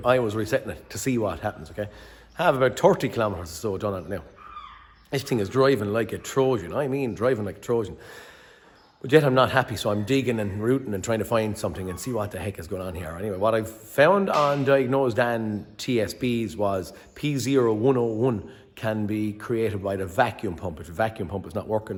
I was resetting it to see what happens, okay? I have about 30 kilometers or so done on it now. This thing is driving like a Trojan. I mean, driving like a Trojan. But yet I'm not happy, so I'm digging and rooting and trying to find something and see what the heck is going on here. Anyway, what I found on Diagnosing TSBs was P0101 can be created by the vacuum pump if the vacuum pump is not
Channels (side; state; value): both; identical; correlation 1.00